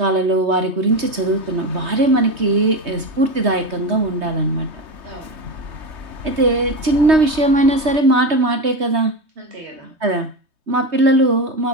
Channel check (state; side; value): late; left; 3.2 ms